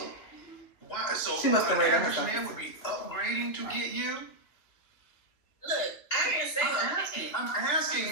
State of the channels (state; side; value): late; right; 3.1 ms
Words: why? So She must have an rated average herself. man would be upgrading to get you. Look, I didn't say I'm asking,